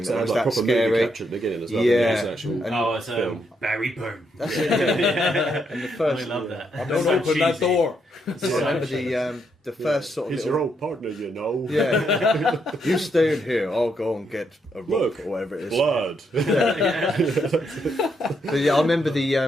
because it that had was like that proper movie scary. capture at the beginning as well. Yeah. Yeah, it was an actual And- Oh, it's film. Barry Boom. And the I first, love that. Don't It's so open that cheesy. door. It's I so remember cheesy. the first sort of He's little- your old partner, you know. yeah. You stay in here. I'll go and get a rock Look, or whatever it is. Blood. But yeah, I remember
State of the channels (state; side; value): normal; both; correlation 0.77